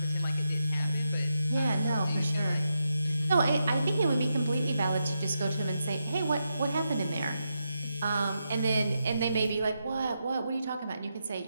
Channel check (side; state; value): both; inverted; correlation -0.85